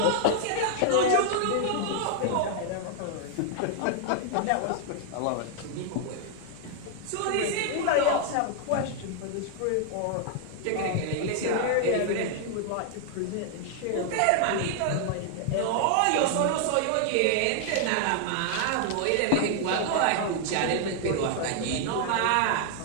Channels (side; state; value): both; different; correlation 0.00